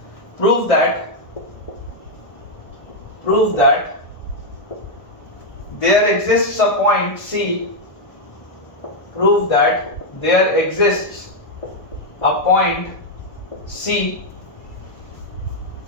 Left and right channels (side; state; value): right; late; 1.2 ms